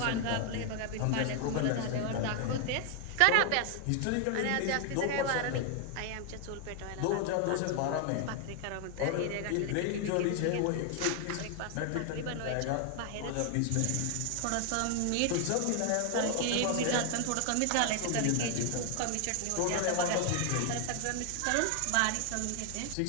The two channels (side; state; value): both; different; correlation 0.00